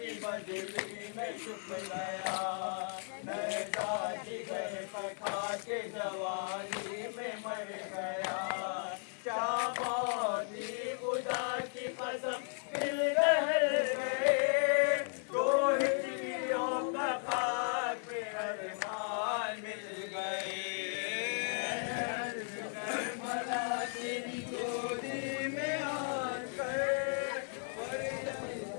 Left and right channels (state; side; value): silent; right; 54 dB below the other